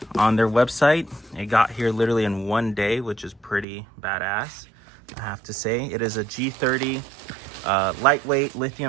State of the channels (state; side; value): drops out; left; at 3.7 s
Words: on their website. It got here literally in one day, which is pretty badass, I have to say. It is a G30 lightweight